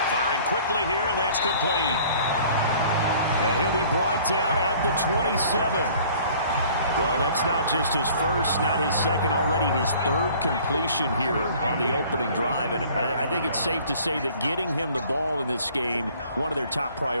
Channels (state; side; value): inverted; both; correlation -0.52